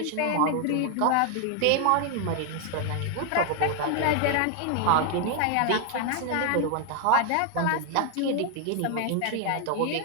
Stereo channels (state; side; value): different; both; correlation 0.00